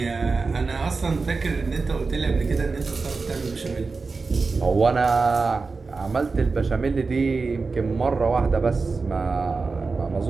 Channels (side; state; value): left; quieter; 4.2 dB